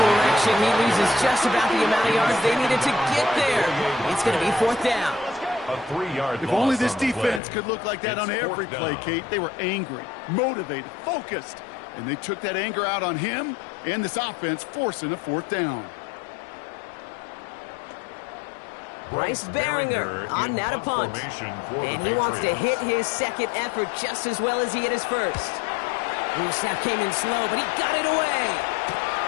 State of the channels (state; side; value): drops out; right; at 7.4 s